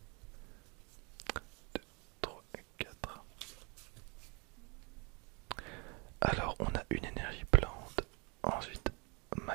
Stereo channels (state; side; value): quieter; left; 31.7 dB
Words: Deux, trois, quatre. Alors on a une énergie plante, ensuite